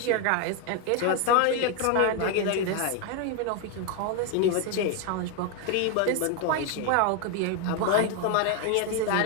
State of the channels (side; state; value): both; different; correlation 0.01